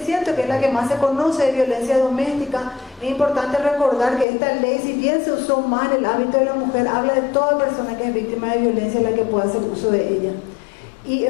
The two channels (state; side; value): drops out; right; at 4.2 s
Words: que es la que más se conoce de violencia doméstica. Es importante recordar que esta ley, si bien se usó más en el ámbito de la mujer, habla de toda persona que es víctima de violencia, la que pueda hacer uso de ella. Y